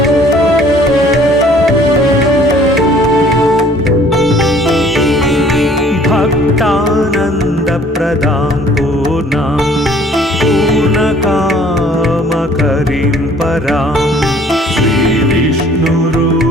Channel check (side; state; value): both; normal; correlation 0.56